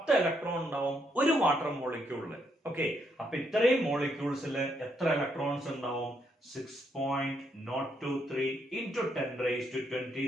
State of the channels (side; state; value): both; normal; correlation 0.76